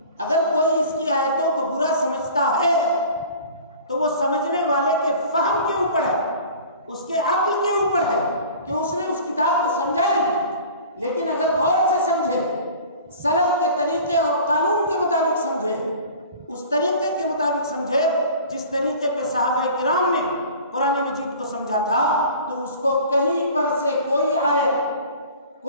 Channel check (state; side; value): inverted; both; correlation -0.43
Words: اگر کوئی اس کی آیتوں کو برا سمجھتا ہے تو وہ سمجھنے والے کے فہم کے اوپر ہے، اس کے عقل کے اوپر ہے کہ اس نے اس کتاب کو سمجھا نہیں، لیکن اگر غور سے سمجھے، سلف کے طریقے اور قانون کے مطابق سمجھے، اس طریقے کے مطابق سمجھے جس طریقے پہ صحابہ کرام نے قرآن مجید کو سمجھا تھا، تو اس کو کہیں پر سے کوئی آیت،